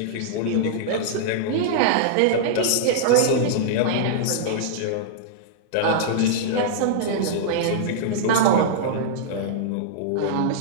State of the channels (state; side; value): different; both; correlation -0.02